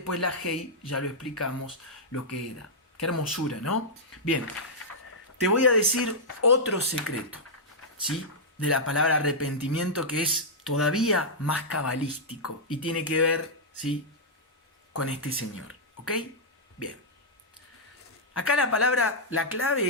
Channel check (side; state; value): both; normal; correlation -0.09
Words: la hei, ya lo explicamos lo que era. Qué hermosura, ¿no? Bien, te voy a decir otro secreto, ¿sí?, de la palabra arrepentimiento, que es todavía más cabalístico y tiene que ver, ¿sí?, con este señor, ¿ok? Bien. Acá la